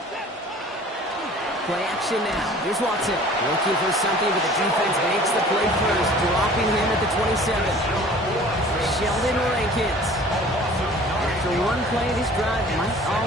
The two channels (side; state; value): both; normal; correlation 0.48